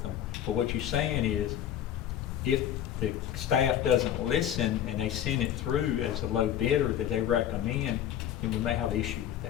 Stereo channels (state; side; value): quieter; right; 10.5 dB